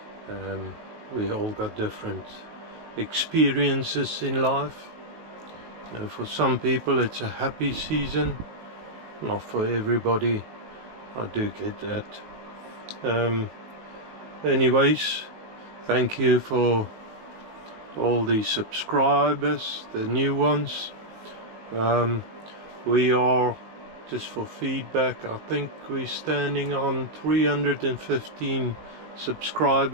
We all got different experiences in life. For some people it's a happy season, not for everybody. I do get that. Anyways, thank you for all the subscribers, the new ones. We are, just for feedback, I think we're standing on 315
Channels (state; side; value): late; left; 18 ms